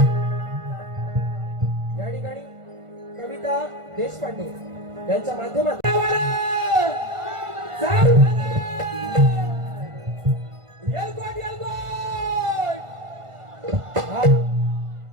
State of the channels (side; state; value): left; late; 1.5 ms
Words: या ठिकाणी कविता देशपांडे यांच्या माध्यमातून